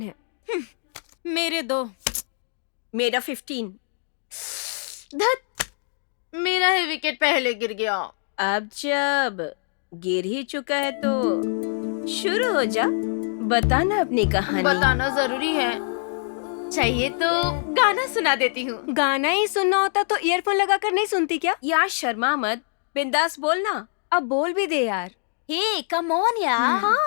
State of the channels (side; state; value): right; silent; 62 dB below the other